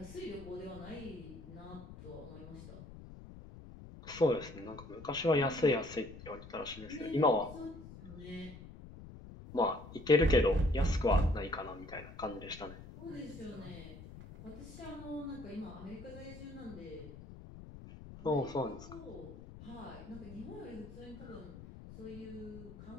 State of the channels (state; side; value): noise; left; rumble, 14 dB below the sound